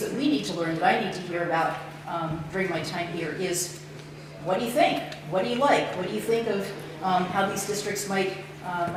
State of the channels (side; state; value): both; identical; correlation 1.00